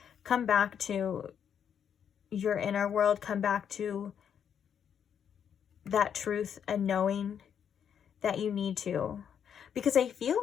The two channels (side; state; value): right; quieter; 8.2 dB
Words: come back to your inner world. Come back to that truth and knowing that you need to. Because I feel